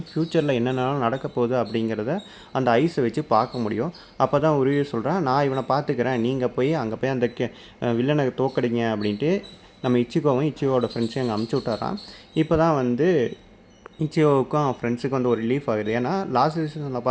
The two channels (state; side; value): identical; both; correlation 1.00